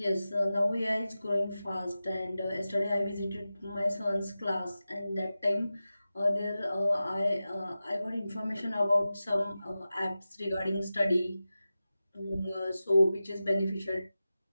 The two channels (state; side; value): inverted; both; correlation -0.94